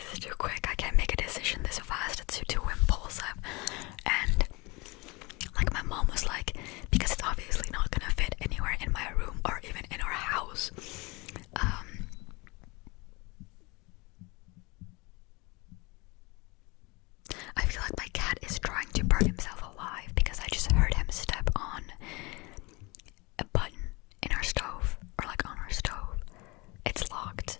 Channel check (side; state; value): right; quieter; 25.6 dB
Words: is too quick, I can't make a decision this fast, it's too impulsive. And like my mom was like, because it's obviously not gonna fit anywhere in my room or even in our house. I feel like my cat is trying to burn himself alive because I just heard him step on a button in our stove, or like on our stove. It's locked,